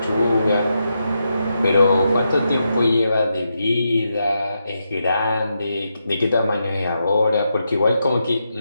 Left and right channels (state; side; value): inverted; both; correlation -0.85